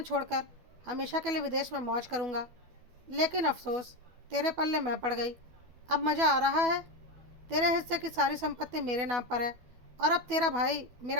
छोड़कर हमेशा के लिए विदेश में मौज करूँगा। लेकिन अफसोस, तेरे पल्ले मैं पड़ गई। अब मज़ा आ रहा है। तेरे हिस्से की सारी संपत्ति मेरे नाम पर है और अब तेरा भाई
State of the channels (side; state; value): left; late; 12 ms